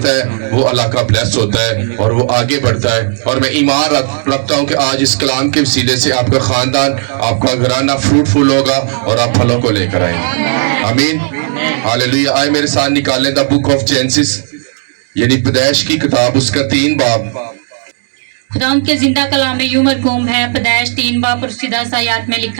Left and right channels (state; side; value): silent; left; digital silence